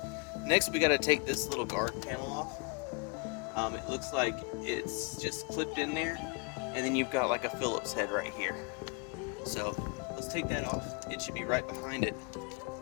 Next we got to take this little guard panel off. It looks like it's just clipped in there, and then you've got like a Phillips head right here. So let's take that off. It should be right behind it,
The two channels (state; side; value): quieter; right; 32.2 dB